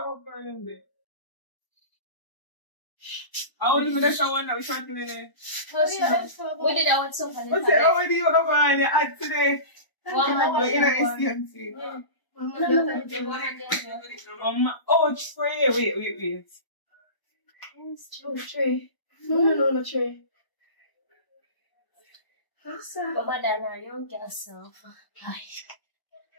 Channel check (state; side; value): late; right; 1.0 ms